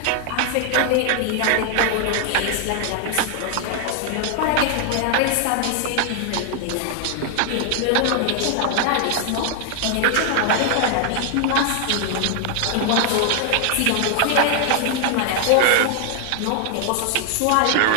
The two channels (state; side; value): different; both; correlation 0.00